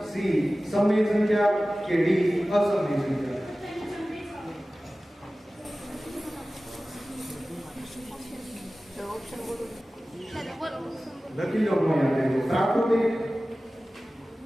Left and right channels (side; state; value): both; normal; correlation 0.96